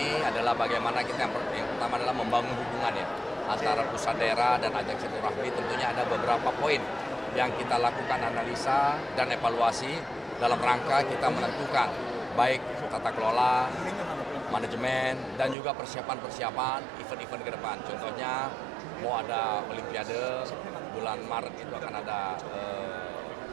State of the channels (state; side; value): drops out; left; at 15.6 s